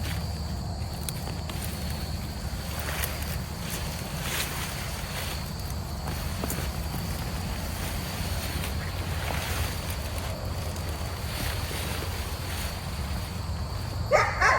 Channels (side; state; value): both; identical; correlation 1.00